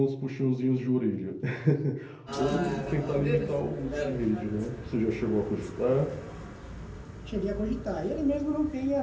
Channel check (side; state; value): both; identical; correlation 1.00